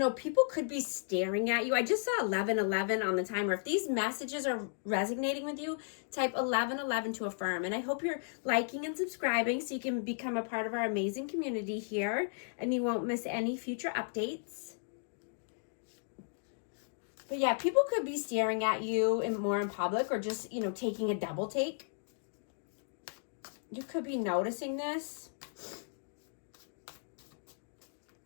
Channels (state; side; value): silent; right; digital silence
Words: People could be staring at you. I just saw 1111 on the timer. If these messages are resonating with you, type 1111 to affirm. And I hope you're liking and subscribing so you can become a part of our amazing community here and you won't miss any future updates. But yeah, people could be staring at you more in public, or just, taking a double take. You could be noticing this.